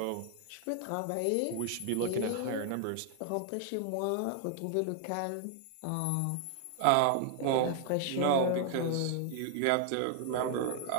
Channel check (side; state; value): both; different; correlation 0.00